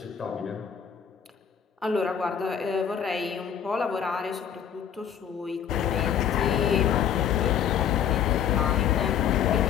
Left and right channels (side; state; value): right; quieter; 8.5 dB